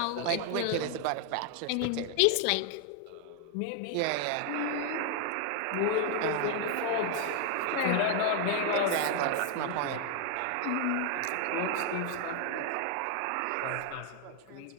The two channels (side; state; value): both; different; correlation 0.00